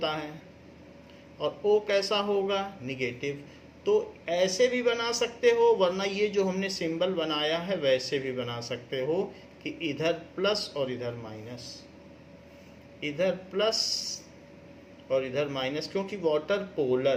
है और O कैसा होगा? निगेटिव। तो ऐसे भी बना सकते हो, वरना ये जो हमने सिंबल बनाया है वैसे भी बना सकते हो कि इधर प्लस और इधर माइनस, इधर प्लस और इधर माइनस, क्योंकि वाटर पोलर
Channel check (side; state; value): both; identical; correlation 1.00